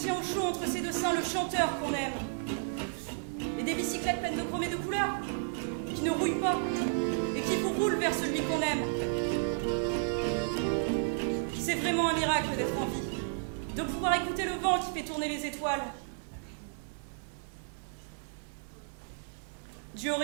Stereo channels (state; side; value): silent; left; digital silence